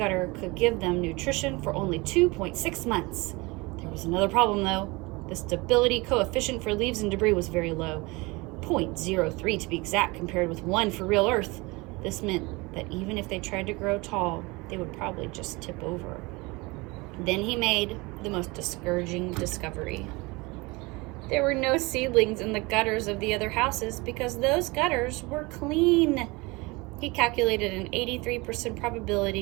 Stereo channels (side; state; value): left; quieter; 24.6 dB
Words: could give them nutrition for only 2.6 months. There was another problem, though. The stability coefficient for leaves and debris was very low, 0.03 to be exact, compared with 1 for real Earth. This meant that even if they tried to grow tall, they would probably just tip over. Then he made the most discouraging discovery. There were no seedlings in the gutters of the other houses because those gutters were clean. He calculated an 83%